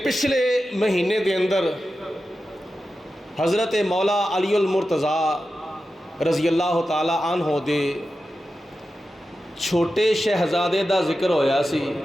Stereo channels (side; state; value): both; normal; correlation 0.92